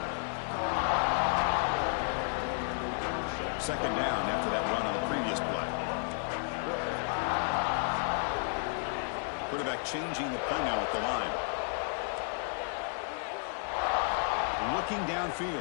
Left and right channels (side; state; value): right; silent; 56 dB below the other